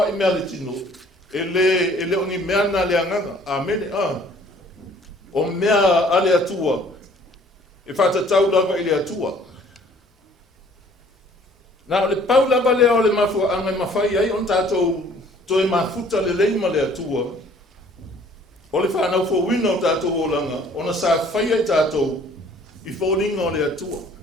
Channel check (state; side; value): normal; both; correlation 0.56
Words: I mea le tino. E le oni mea na le anganga. Amen. O mea ale atua e whatatau lava I le atua. Na o le pau lava lea o le mafua anga mawhai ai on tātou toi mafuta le leima le atua. O le whanau fo wina o tātou o langa, ona sa whai ai tātou I fōlinga o le atua.